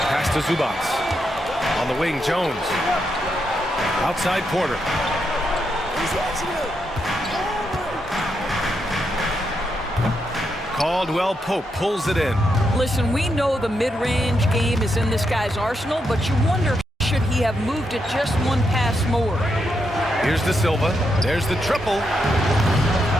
Pass to Zubac. On the wing, Jones. Outside Porter. Caldwell Pope pulls it in. Listen, we know the mid-range game is in this guy's arsenal, but you wonder, should he have moved it just one pass more? Here's De Silva. There's the triple.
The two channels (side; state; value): both; normal; correlation 0.82